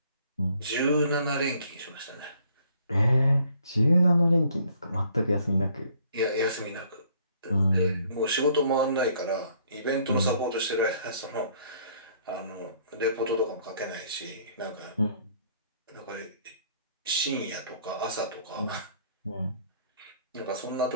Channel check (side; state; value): both; inverted; correlation -0.62